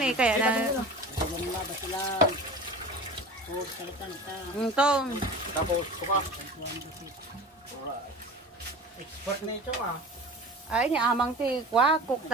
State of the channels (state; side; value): normal; both; correlation 0.36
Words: na kaya na. Ito. Tapos, kuka. Expert na ito ah. Ay, ni amang ti cook